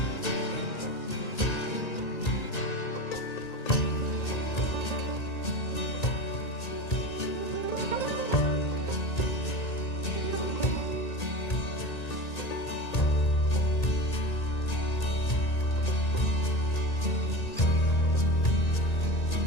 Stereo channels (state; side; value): late; right; 1.8 ms